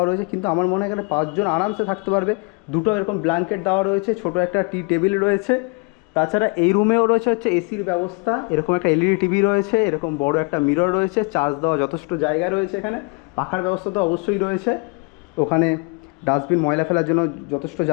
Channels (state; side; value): quieter; right; 31.4 dB